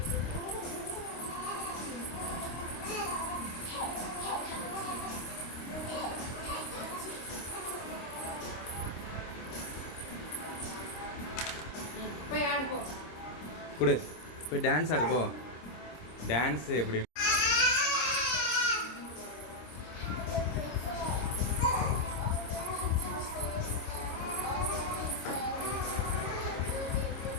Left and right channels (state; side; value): late; right; 26 ms